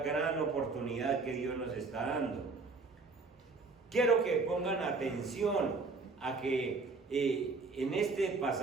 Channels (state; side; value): quieter; left; 4.0 dB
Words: gran oportunidad que Dios nos está dando. Quiero que pongan atención a que en este